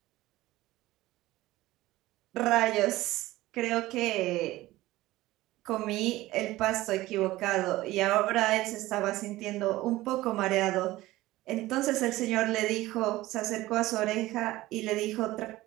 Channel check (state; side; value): quieter; left; 17.4 dB